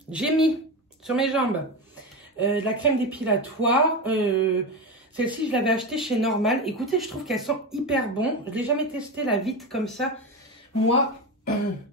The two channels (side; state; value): both; normal; correlation 0.19